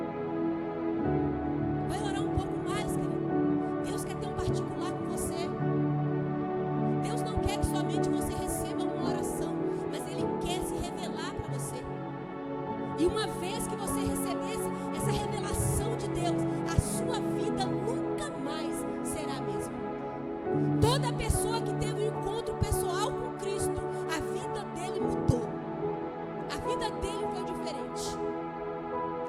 Vai orar um pouco mais, querido. Deus quer ter um particular com você. Deus não quer que somente você receba uma oração, mas Ele quer se revelar para você. E uma vez que você recebesse essa revelação de Deus, a sua vida nunca mais será a mesma. Toda pessoa que teve um encontro pessoal com Cristo, a vida dele mudou. A vida dele foi diferente.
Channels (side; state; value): both; identical; correlation 1.00